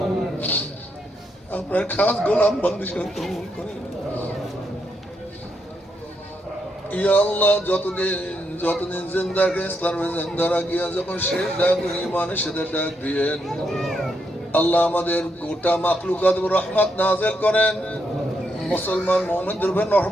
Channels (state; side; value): normal; both; correlation 0.79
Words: আপনার খাস গোলাম বান্দী হিসেবে কবুল করেন। ইয়া আল্লাহ যতদিন জিন্দা কে ইসলামে জিন্দা রাখিয়া যখন শেষ ডাক ঈমানের সাথে ডাক দিয়েন, আল্লাহ আমাদের গোটা মাখলুকাত রহমত নাযিল করেন। মুসলমান মুমিনদের উপর